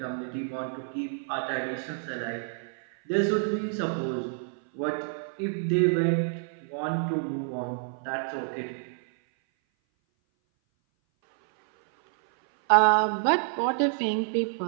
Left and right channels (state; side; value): silent; left; 57 dB below the other